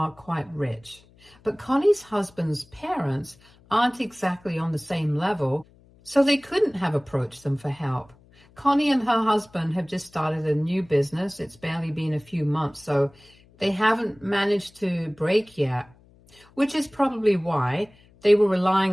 quite rich, but Connie's husband's parents aren't exactly on the same level, so they couldn't have approached them for help. Connie and her husband have just started a new business. It's barely been a few months, so they haven't managed to break yet, which is probably why they were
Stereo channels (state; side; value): noise; left; hum, 28 dB below the sound